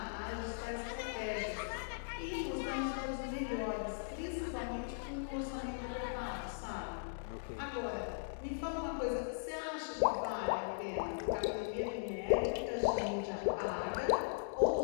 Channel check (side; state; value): right; silent; digital silence